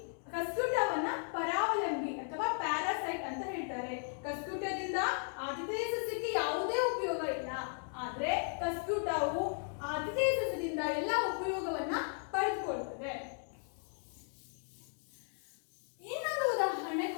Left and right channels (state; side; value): silent; right; 54 dB below the other